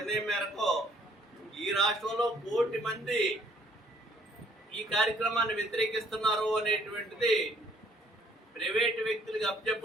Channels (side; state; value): both; normal; correlation 0.62